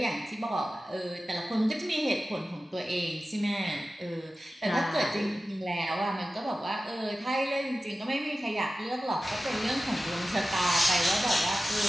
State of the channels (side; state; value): both; normal; correlation 0.95